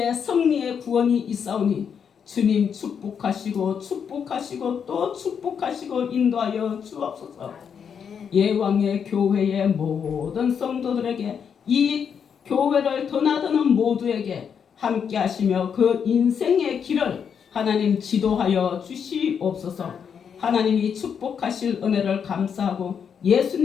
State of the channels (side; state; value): right; quieter; 7.2 dB